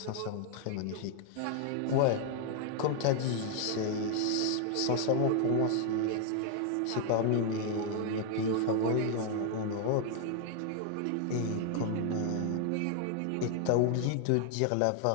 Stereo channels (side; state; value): both; different; correlation 0.00